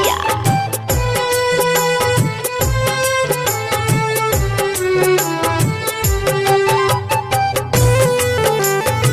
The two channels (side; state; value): both; identical; correlation 1.00